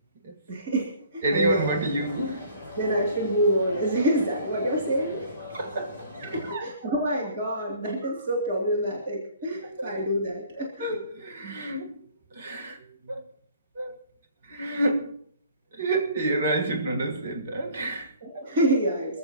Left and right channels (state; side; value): inverted; both; correlation -0.53